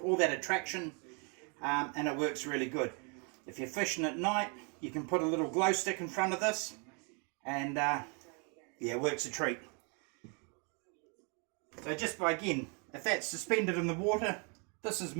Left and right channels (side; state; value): left; quieter; 35.7 dB